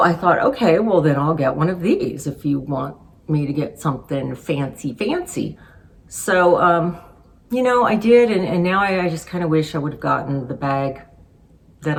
thought, okay, well then I'll get one of these if you want me to get something fancy. So, I did, and now I just kind of wish I would have gotten the bag that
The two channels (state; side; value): identical; both; correlation 1.00